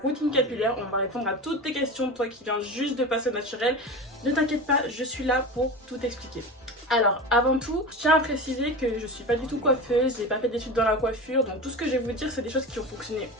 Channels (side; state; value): both; normal; correlation 0.28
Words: routine capillaire, on va répondre à toutes tes questions, toi qui viens juste de passer au naturel. Ne t'inquiète pas, je suis là pour tout expliquer. Alors avant tout, je tiens à préciser que je suis pas du tout coiffeuse, j'ai pas fait d'études dans la coiffure, donc tout ce que je vais vous dire c'est des choses qui ont fonctionné